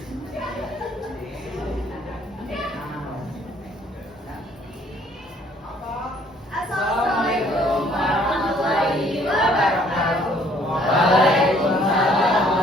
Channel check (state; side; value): normal; both; correlation 0.61